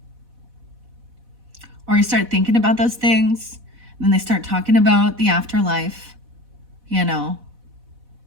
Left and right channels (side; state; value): left; late; 4.1 ms